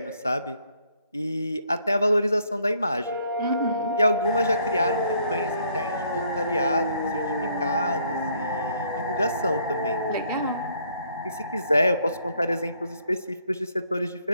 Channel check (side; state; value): both; inverted; correlation -0.66